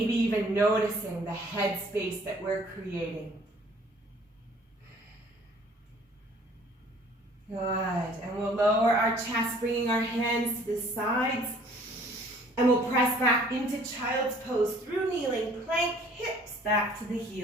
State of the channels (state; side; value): normal; both; correlation 0.55